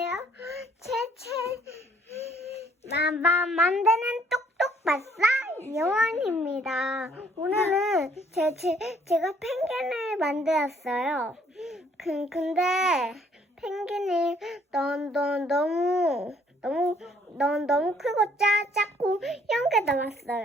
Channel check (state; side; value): normal; both; correlation 0.63